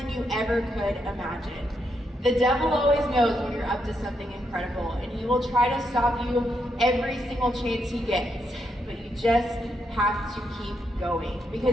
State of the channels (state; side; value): normal; both; correlation 0.80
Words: you ever could imagine. The devil always knows when you're up to something incredible, and he will try to stop you every single chance he gets, but you just have to keep going,